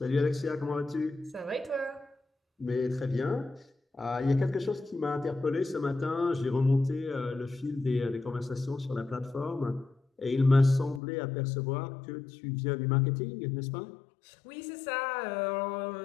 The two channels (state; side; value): drops out; right; at 11.0 s